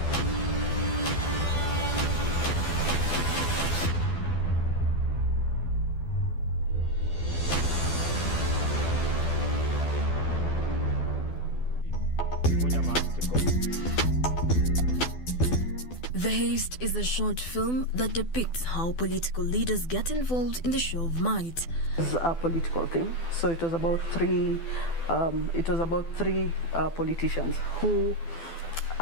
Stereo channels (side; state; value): right; late; 12 ms